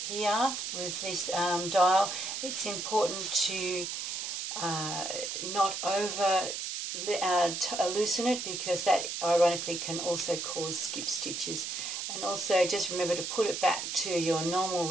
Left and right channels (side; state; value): right; noise; hiss, 4 dB below the sound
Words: here with this dial, it's important to not over loosen it, because that ironically can also cause skip stitches. And also just remember to put it back to your normal